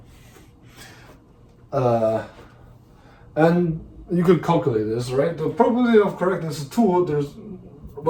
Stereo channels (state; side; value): identical; both; correlation 1.00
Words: And you could calculate this, right? The probability of correctness is 2. There's